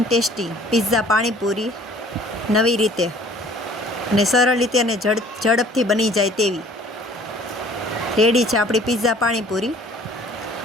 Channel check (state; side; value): normal; both; correlation 0.53